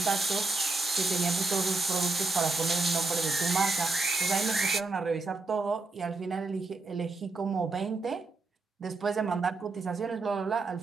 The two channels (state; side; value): quieter; left; 3.7 dB